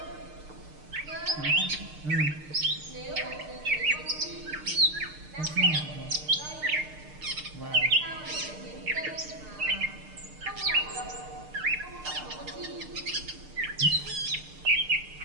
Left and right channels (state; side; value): late; left; 6.6 ms